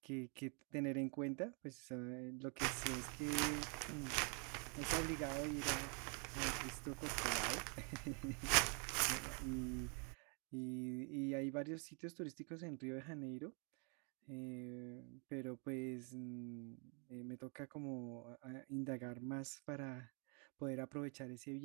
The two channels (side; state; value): left; quieter; 37.0 dB